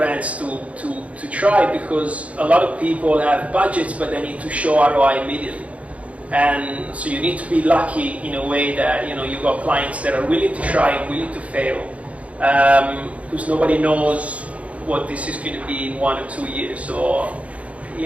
to try, because a lot of people have budgets but they need to show ROI immediately. And so you need to be lucky in a way that you've got clients that are willing to try and willing to fail, because nobody knows what this is going to be in 1 or 2 years. So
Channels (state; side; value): late; left; 0.065 ms